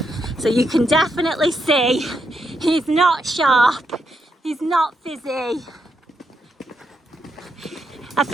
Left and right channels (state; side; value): normal; both; correlation 0.80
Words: So you can definitely see he's not sharp. He's not fizzy. I